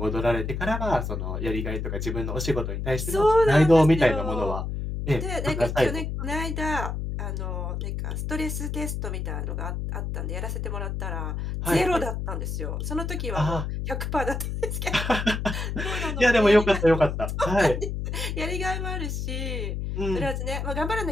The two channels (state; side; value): noise; left; hum, 3 dB below the sound